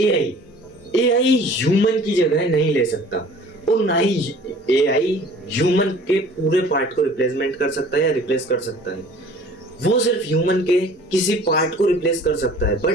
एआई ह्यूमन की जगह नहीं ले सकता और ना ही एआई ह्यूमन के पूरे पार्ट को रिप्लेसमेंट कर सकता है या रिप्लेस कर सकता है। वो सिर्फ ह्यूमन के किसी पार्ट को रिप्लेस कर सकता है,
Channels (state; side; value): normal; both; correlation 0.49